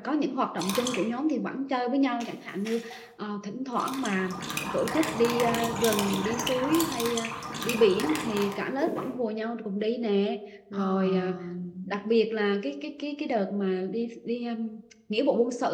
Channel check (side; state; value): both; identical; correlation 1.00